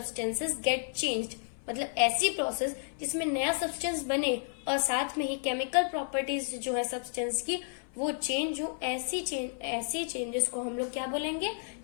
get changed, मतलब ऐसी प्रोसेस जिसमें नया सब्सटेंस बने और साथ में ही केमिकल प्रॉपर्टीज जो है सब्सटेंस की वो चेंज हो, ऐसी चेंजेस को हम लोग क्या बोलेंगे,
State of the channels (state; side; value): silent; right; 57 dB below the other